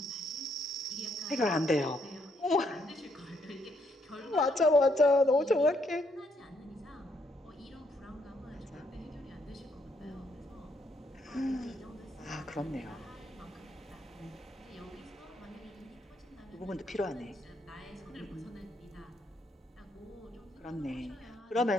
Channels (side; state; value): both; normal; correlation 0.73